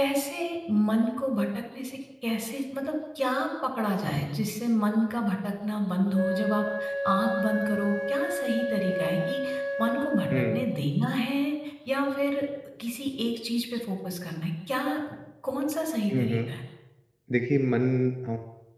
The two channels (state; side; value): identical; both; correlation 1.00